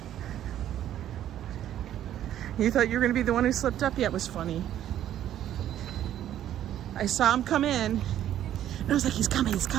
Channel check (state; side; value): quieter; left; 11.5 dB